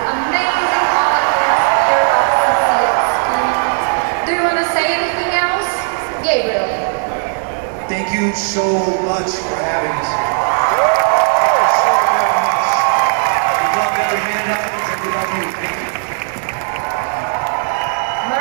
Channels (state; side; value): silent; left; 63 dB below the other